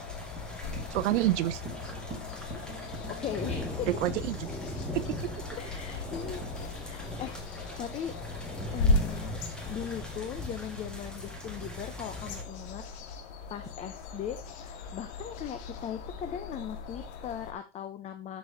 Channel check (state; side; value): normal; both; correlation 0.01